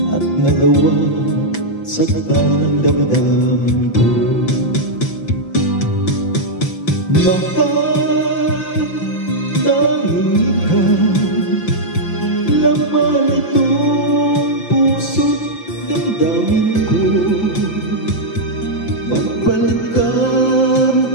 at nagawa saktan ng damdamin ko? Mahal, tanging ikaw, laman itong puso't damdamin ko. Magbalik ka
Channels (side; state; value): right; late; 5.9 ms